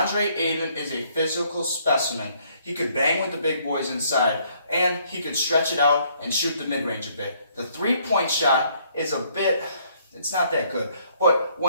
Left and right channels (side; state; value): both; inverted; correlation -0.66